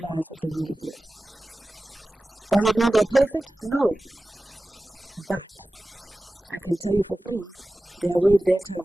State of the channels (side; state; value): both; normal; correlation 0.96